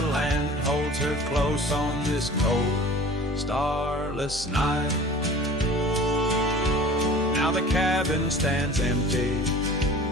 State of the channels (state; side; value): normal; both; correlation 0.43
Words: land holds her close on this cold, starless night? Now the cabin stands empty,